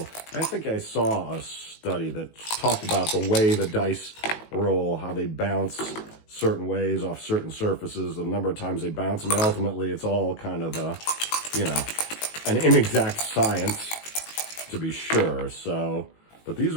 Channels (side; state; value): right; late; 19 ms